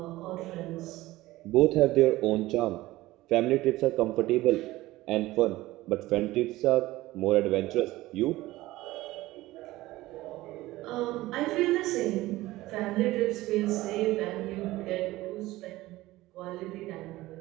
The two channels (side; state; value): left; quieter; 17.8 dB